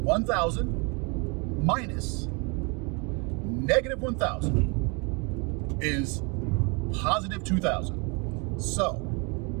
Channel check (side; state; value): left; quieter; 31.9 dB